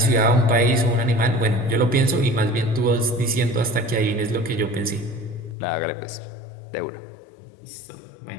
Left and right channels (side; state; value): right; drops out; at 5.6 s